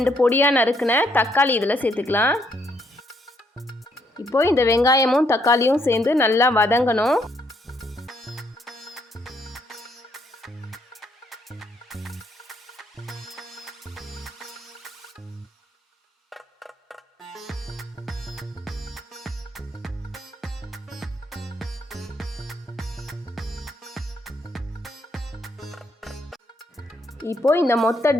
பொடியாக நறுக்கின தக்காளி இதில் சேர்த்துக்கலாம். இப்போது இந்த வெங்காயமும் தக்காளியும் சேர்ந்து நல்லா வதங்கணும். இப்போது இந்த மொத்த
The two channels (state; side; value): normal; both; correlation 0.72